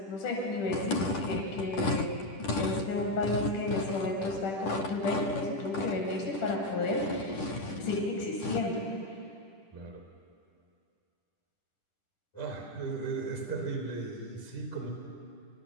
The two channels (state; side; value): late; right; 10 ms